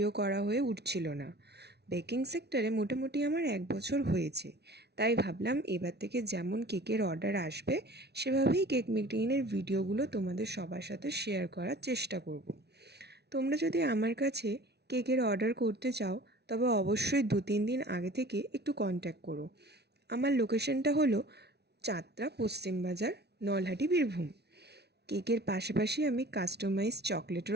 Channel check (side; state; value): left; late; 0.49 ms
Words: করা হয়ে উঠছিল না। বেকিং সেক্টরে মোটামুটি আমার 1 বছর হয়েছে, তাই ভাবলাম এবার থেকে যেমন কেকের অর্ডার আসবে সেভাবেই কেক মেকিংয়ের ভিডিওগুলো তোমাদের সবার সাথে শেয়ার করার চেষ্টা করব। তোমরা যদি আমার কাছে কেকের অর্ডার করতে চাও তবে অবশ্যই 2-3 দিন আগে থেকে একটু কন্ট্যাক্ট করো। আমার লোকেশনটা হলো চাতরা পশ্চিম বাজার, নলহাটি, বীরভূম। কেকের পাশাপাশি আমি কাস্টমাইজ